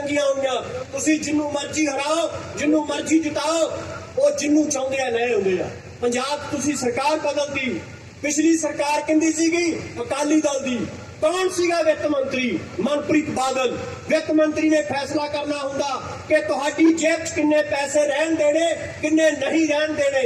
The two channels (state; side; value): identical; both; correlation 1.00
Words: होईयां। तुसीं जिन्नू मर्जी हराओ, जिन्नू मर्जी जिताओ, वो जिन्नू चाहुंदे आ ले आउंदे आ। पंजाब तुसीं सरकार बदलदी, पिछली सरकार किंदी सीगी? अकाली दल दी। कौन सीगा वित्त मंत्री? मनप्रीत बादल। वित्त मंत्री ने फैसला करना हुंदा कि तुहाडी जेब च किन्ने पैसे रहन देने, किन्ने नहीं रहन देने।